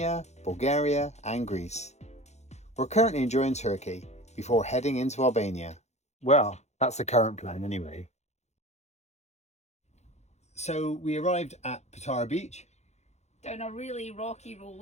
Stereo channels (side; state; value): right; late; 0.32 ms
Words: Bulgaria and Greece. We're currently enjoying Turkey before heading into Albania. Well, that's the current plan anyway. So we arrived at Patara Beach. Down a really rocky